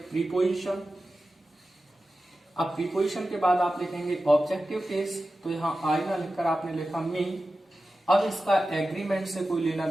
प्रीपोजिशन। अब प्रीपोजिशन के बाद आप लिखेंगे ऑब्जेक्टिव केस, तो यहाँ आई ना लिखकर आपने लिखा मी। अब इसका एग्रीमेंट से कोई लेना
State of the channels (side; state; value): both; normal; correlation 0.93